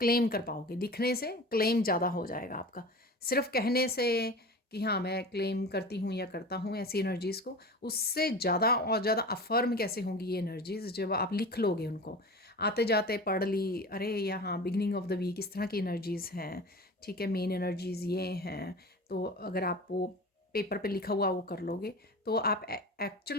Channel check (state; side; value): normal; both; correlation 0.34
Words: कर पाओगे, लिखने से क्लेम ज़्यादा हो जाएगा आपका। सिर्फ कहने से कि हाँ मैं क्लेम करती हूँ या करता हूँ ऐसी एनर्जीज़ को, उससे ज़्यादा और ज़्यादा अफर्म कैसे होंगी ये एनर्जीज़ जब आप लिख लोगे उनको। आते जाते पढ़ ली, अरे यहाँ बिगनिंग ऑफ द वीक इस तरह की एनर्जीज़ हैं, ठीक है, मेन एनर्जीज़ ये हैं। तो अगर आप वो पेपर पे लिखा हुआ वो कर लोगे, तो आप एक्चुअल